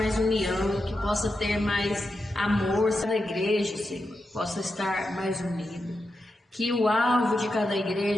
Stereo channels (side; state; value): both; normal; correlation 0.88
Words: união, que possa ter mais amor, cada igreja, Senhor, possa estar mais unida. Que o alvo de cada